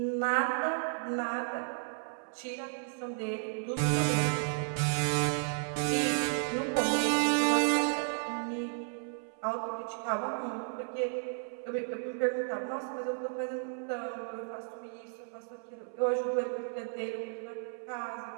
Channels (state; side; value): silent; left; 56 dB below the other